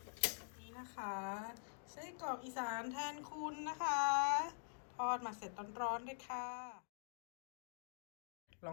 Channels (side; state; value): right; silent; digital silence